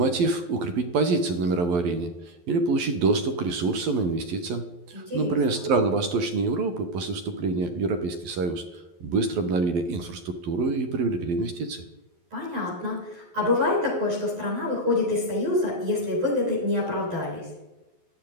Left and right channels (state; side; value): late; left; 11 ms